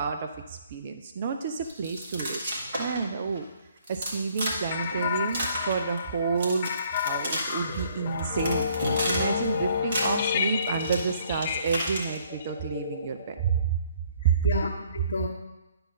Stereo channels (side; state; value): both; inverted; correlation -0.62